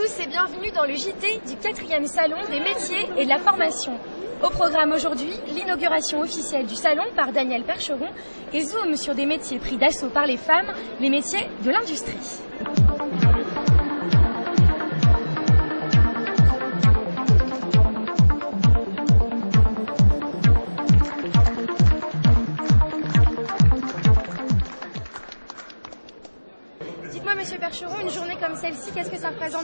et bienvenue dans le JT du 4e Salon des métiers et de la formation. Au programme aujourd'hui, l'inauguration officielle du salon par Daniel Percheron et zoom sur des métiers pris d'assaut par les femmes, les métiers de l'industrie. Dites-moi, Monsieur Percheron, une journée comme celle-ci, qu'est-ce que ça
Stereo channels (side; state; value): both; inverted; correlation -1.00